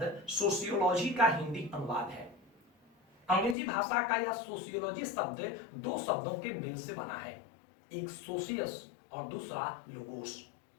सोशियोलॉजी का हिंदी अनुवाद है। अंग्रेजी भाषा का यह सोशियोलॉजी शब्द दो शब्दों के मेल से बना है, एक सोशियस और दूसरा लोगोस।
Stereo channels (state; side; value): drops out; right; at 3.6 s